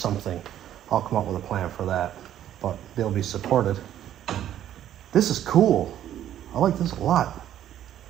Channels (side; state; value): left; quieter; 11.3 dB